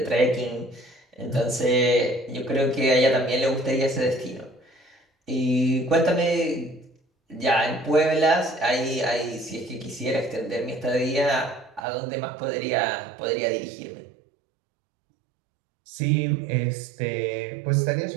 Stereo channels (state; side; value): drops out; left; at 11.8 s